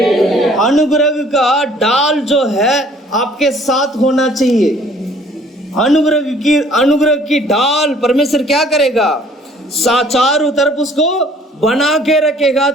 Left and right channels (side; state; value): both; normal; correlation 0.56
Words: अनुग्रह का डाल जो है आपके साथ होना चाहिए। अनुग्रह की डाल परमेश्वर क्या करेगा? चारों तरफ उसको बना के रखेगा